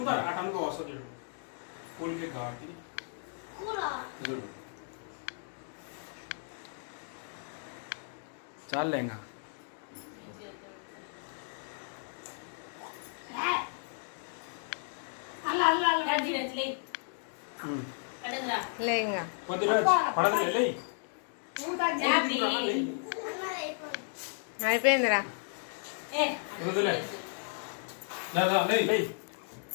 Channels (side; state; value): right; silent; digital silence